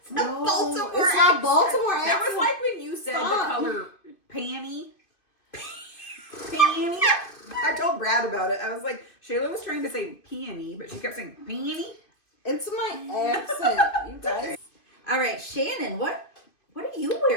No, Baltimore it's not accent. Baltimore accent. That was like when you said Stop. the color panty. Panty. I told Brad about it. I was like, Shayla was trying to say peony, but she kept saying panty. It's my accent, you guys. All right, Shannon, what are you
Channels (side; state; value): right; late; 2.5 ms